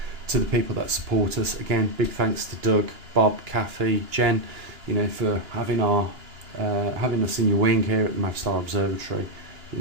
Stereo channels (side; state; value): left; late; 2.9 ms